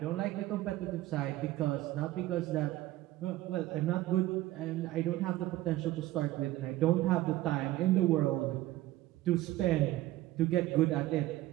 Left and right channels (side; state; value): left; quieter; 16.2 dB